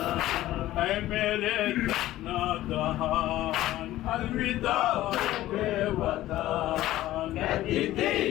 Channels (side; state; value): right; quieter; 15.1 dB